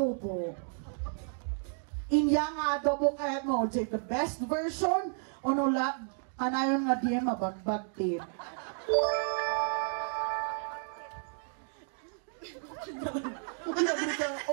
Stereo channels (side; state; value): left; silent; 56 dB below the other